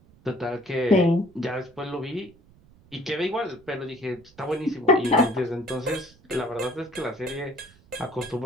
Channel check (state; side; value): noise; right; rumble, 27 dB below the sound